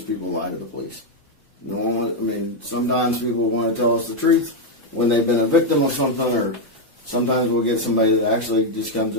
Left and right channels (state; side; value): normal; both; correlation 0.02